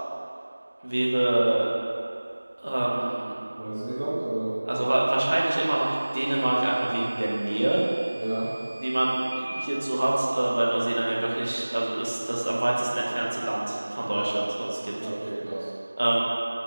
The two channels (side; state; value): both; inverted; correlation -1.00